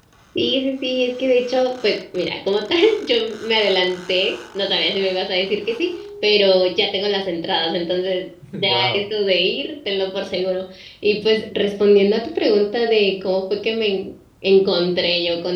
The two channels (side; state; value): both; identical; correlation 1.00